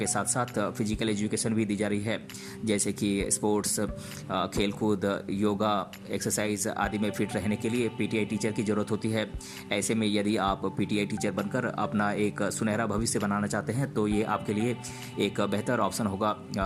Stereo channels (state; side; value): identical; both; correlation 1.00